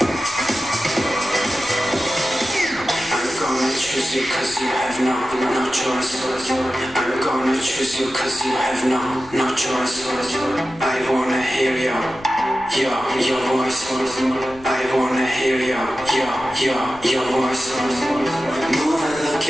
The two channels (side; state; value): left; noise; rumble, 21 dB below the sound